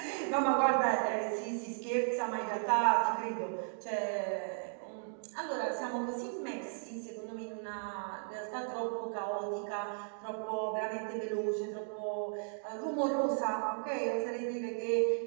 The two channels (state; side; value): silent; left; digital silence